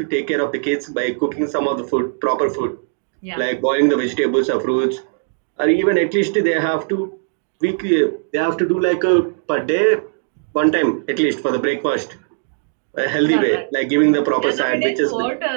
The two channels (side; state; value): left; silent; digital silence